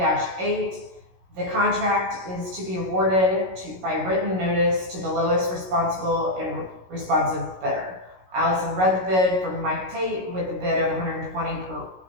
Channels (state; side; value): late; left; 16 ms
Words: The contract is to be awarded by written notice to the lowest responsible and responsive bidder. Allison read the bid from Mike Tate with the bid of $120